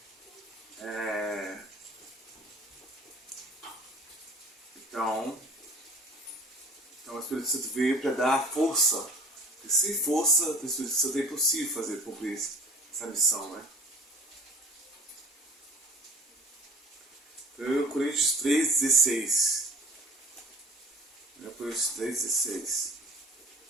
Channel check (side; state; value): both; normal; correlation 0.46